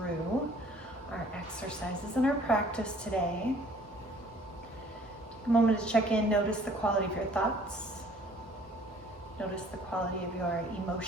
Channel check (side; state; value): both; normal; correlation 0.55